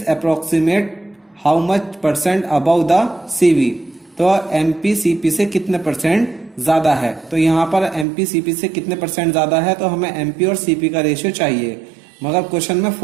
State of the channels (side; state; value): left; drops out; at 8.1 s